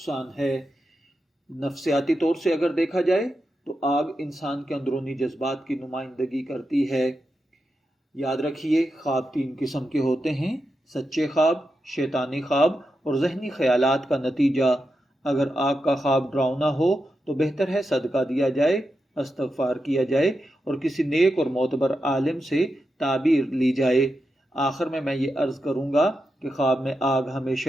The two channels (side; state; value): both; normal; correlation 0.88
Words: ہے۔ نفسیاتی طور سے اگر دیکھا جائے تو آگ انسان کے اندرونی جذبات کی نمائندگی کرتی ہے۔ یاد رکھیے، خواب 3 قسم کے ہوتے ہیں: سچے خواب، شیطانی خواب اور ذہنی خیالات کا نتیجہ۔ اگر آگ کا خواب ڈراؤنا ہو تو بہتر ہے صدقہ دیا جائے، استغفار کیا جائے اور کسی نیک اور معتبر عالم سے تعبیر لی جائے۔ آخر میں یہ عرض کروں گا کہ خواب میں آگ